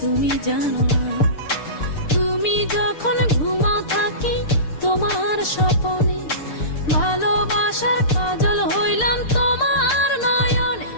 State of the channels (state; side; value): late; right; 6.6 ms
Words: তুমি জানো না। তুমি যখন ঘুমাও থাকি তোমার স্বপনে, ভালোবাসার কাজল হইলাম তোমার